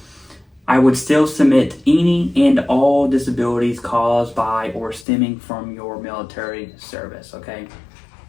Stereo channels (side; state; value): right; drops out; at 5.1 s